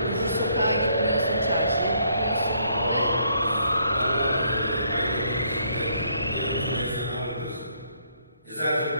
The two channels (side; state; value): both; inverted; correlation -0.69